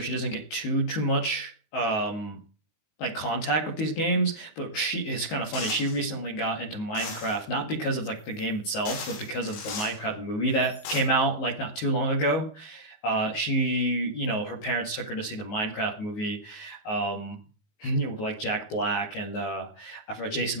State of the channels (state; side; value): late; right; 19 ms